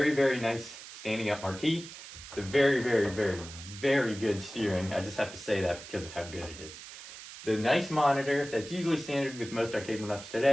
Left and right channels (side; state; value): right; noise; hiss, 14 dB below the sound